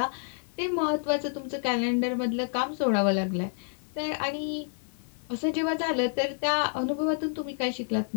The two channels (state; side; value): silent; right; 59 dB below the other